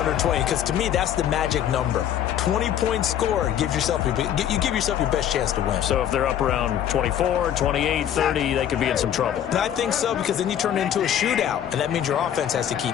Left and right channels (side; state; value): right; quieter; 10.3 dB